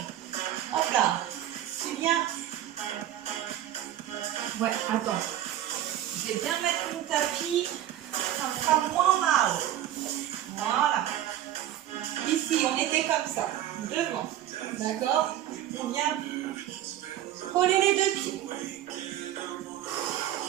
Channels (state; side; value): quieter; left; 12.3 dB